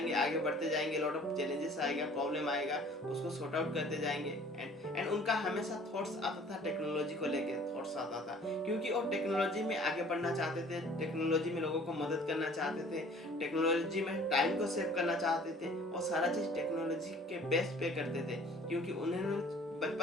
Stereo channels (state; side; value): normal; both; correlation 0.52